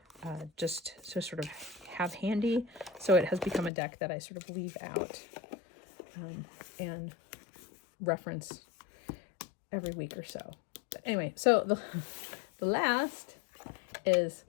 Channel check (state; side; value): drops out; right; at 3.7 s